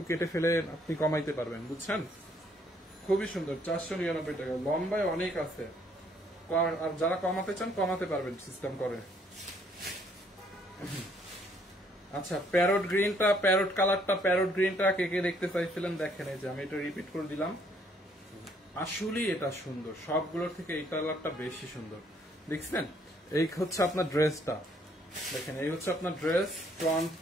কেটে ফেলে আপনি কমাইতে পারবেন, বুঝছেন? খুবই সুন্দর, 499 টাকা। লম্বায় অনেক আছে, আর যারা কমাতে চান কমাতে পারবেন সিস্টেম করে। আচ্ছা প্যারট গ্রিনটা, প্যারট কালারটা, প্যারট গ্রিনটা কে কে দেখতে চাইছিলেন? দেখেন এই যে আমি এটা রিপিট করে দিলাম, আসলেই এটা সুন্দর, সবগুলোর থেকে এই কালারটা বেশি সুন্দর। দেখছেন এই হচ্ছে আপনার ড্রেসটা, দেখেন এই হচ্ছে আপনার ড্রেস, ফ্রন্ট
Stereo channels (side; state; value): both; normal; correlation 0.66